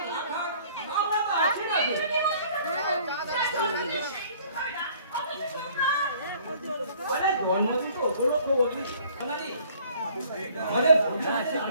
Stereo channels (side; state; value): both; inverted; correlation -0.56